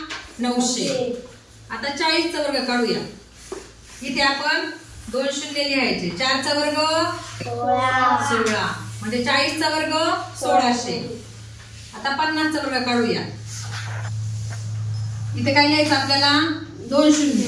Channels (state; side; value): identical; both; correlation 1.00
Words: 900। आता 40 चा वर्ग काढूया। इथे आपण 2 शून्य लिहायचे। 4 चा वर्ग 16 म्हणजे 40 चा वर्ग 1600। आता 50 चा वर्ग काढूया। इथे काय लिहायचं आपल्याला? 2